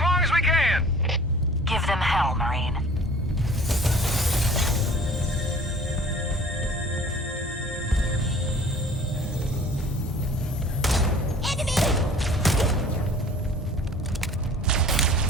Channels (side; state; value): both; normal; correlation 0.48